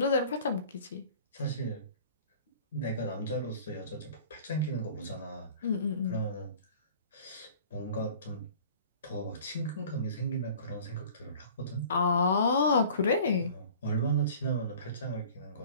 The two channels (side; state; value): both; inverted; correlation -0.46